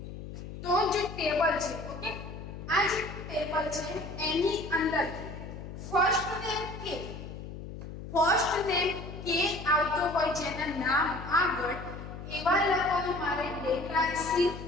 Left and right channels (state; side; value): noise; left; hum, 10 dB below the sound